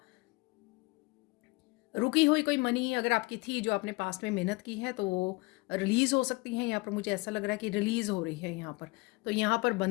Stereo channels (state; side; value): quieter; right; 24.7 dB